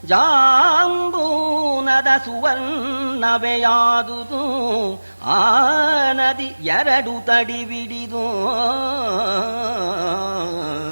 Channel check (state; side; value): inverted; both; correlation -1.00